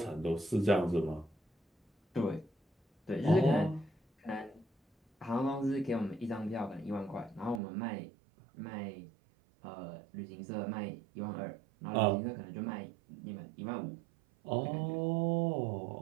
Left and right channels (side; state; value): left; drops out; at 7.6 s